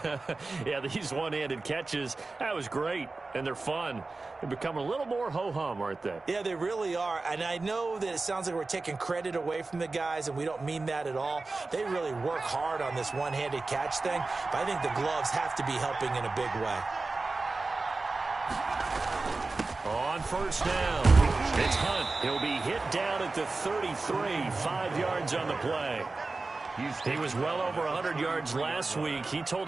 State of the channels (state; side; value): quieter; left; 3.6 dB